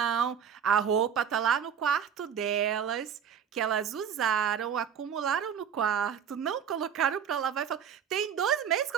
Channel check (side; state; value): left; quieter; 8.0 dB